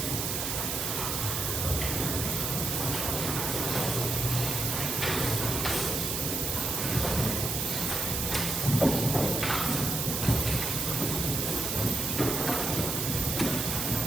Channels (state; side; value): noise; right; hiss, 1 dB below the sound